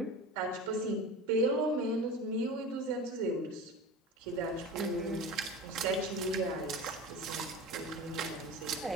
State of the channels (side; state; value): both; normal; correlation 0.31